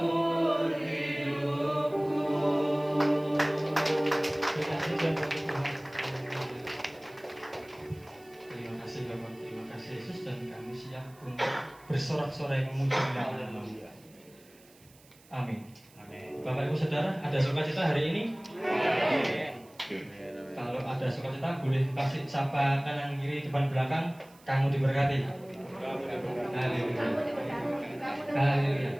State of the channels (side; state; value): right; noise; hiss, 27 dB below the sound